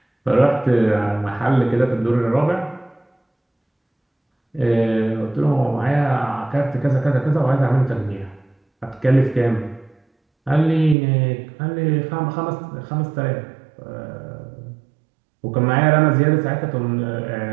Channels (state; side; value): drops out; left; at 11.0 s